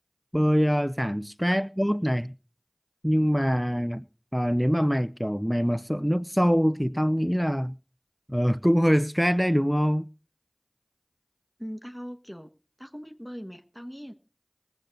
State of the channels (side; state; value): both; identical; correlation 1.00